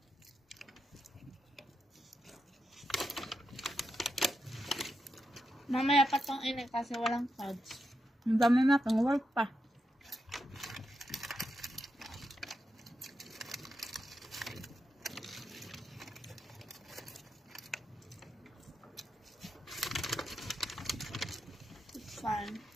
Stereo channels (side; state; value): both; normal; correlation 0.86